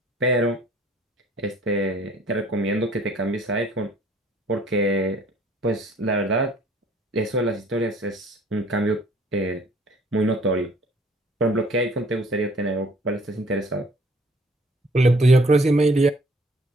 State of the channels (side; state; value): both; normal; correlation 0.57